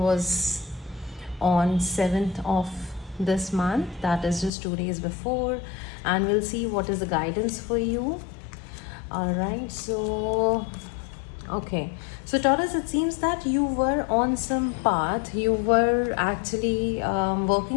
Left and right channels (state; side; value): drops out; right; at 4.5 s